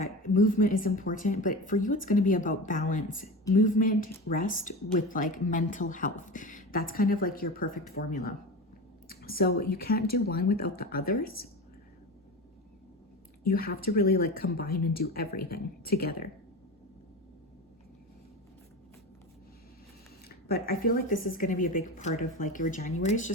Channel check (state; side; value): normal; both; correlation 0.27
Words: movement is important, but for you, it's going to be about balance, movement, rest with like mental health. That's kind of like your perfect formula. So you can't do one without the others. You have to really like combine and do everything together. But I feel like this is going to be a big part of like your January is